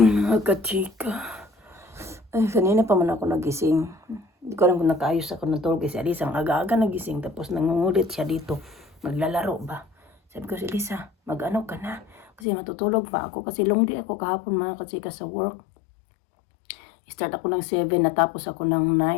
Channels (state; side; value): drops out; right; at 12.2 s